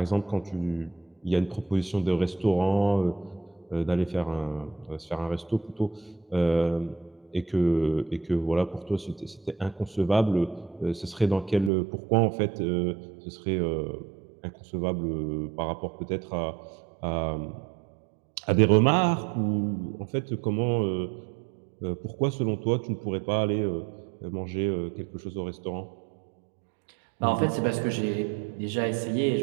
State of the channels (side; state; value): left; drops out; at 11.7 s